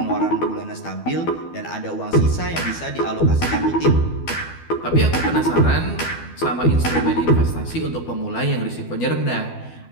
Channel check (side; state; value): right; late; 12 ms